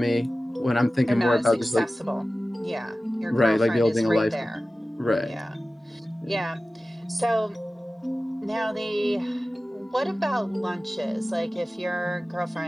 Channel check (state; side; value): normal; both; correlation 0.96